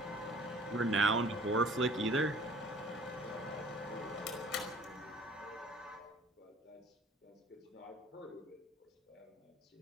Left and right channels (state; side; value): normal; both; correlation 0.50